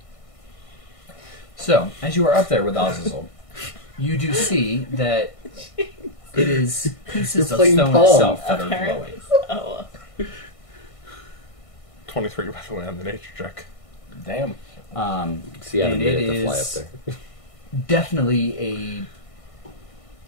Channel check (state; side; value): late; right; 1.6 ms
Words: So, as you are up there with Azazel, you do see that it is pieces You're of playing stone Pong. itself that are Apparently. glowing. Oh. 23, by the way, on the nature check. Damn. See, I had a And minute it to fly up is there. definitely